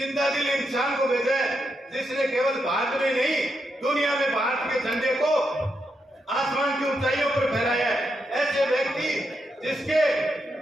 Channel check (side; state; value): both; normal; correlation 0.83